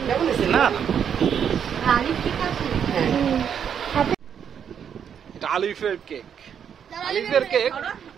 না এটা আলিফের কেক, আলিফের কেক।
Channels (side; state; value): left; quieter; 8.1 dB